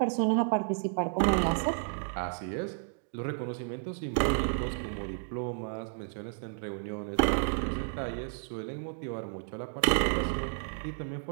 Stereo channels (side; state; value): left; silent; digital silence